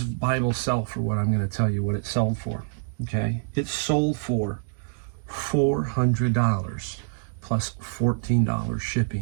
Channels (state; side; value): silent; left; digital silence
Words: Bible sell for what I'm going to tell you what it sold for? Okay. It sold for $400 plus $14